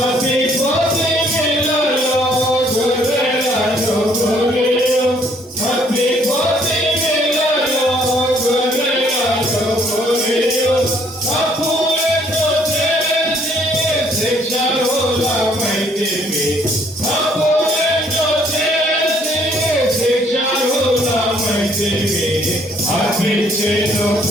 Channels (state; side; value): normal; both; correlation 0.64